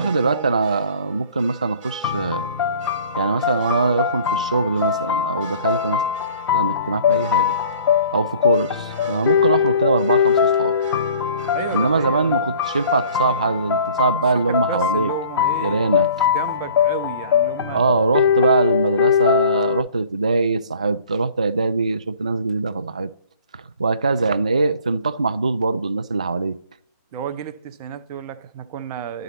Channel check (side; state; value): both; inverted; correlation -0.51